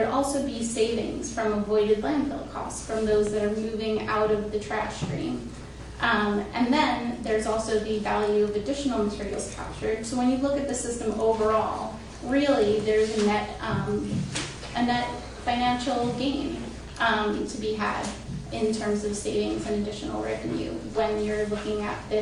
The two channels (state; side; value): identical; both; correlation 1.00